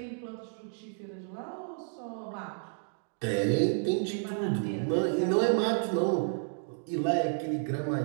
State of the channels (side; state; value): left; silent; 57 dB below the other